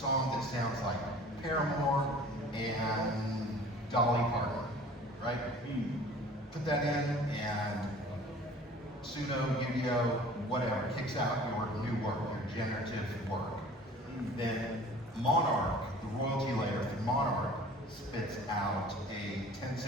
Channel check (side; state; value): both; normal; correlation 0.47